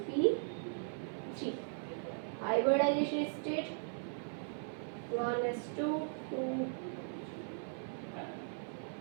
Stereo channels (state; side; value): silent; left; 52 dB below the other